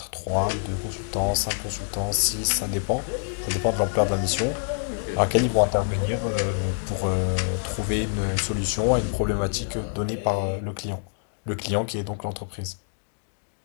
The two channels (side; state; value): right; silent; digital silence